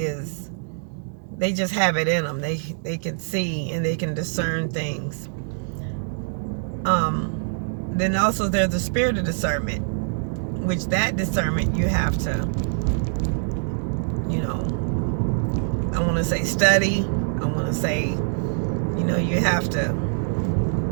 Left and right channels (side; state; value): left; silent; digital silence